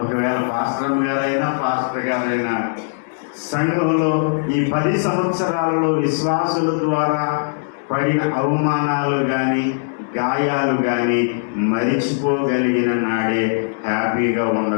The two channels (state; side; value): silent; right; digital silence